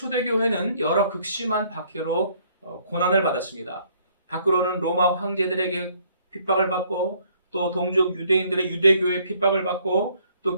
여러 극심한 박해로 고난을 받았습니다. 밖으로는 로마 황제들에게 핍박을 받고 또 동족 유대인들의 유대교회 핍박을 받고 또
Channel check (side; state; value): both; inverted; correlation -0.63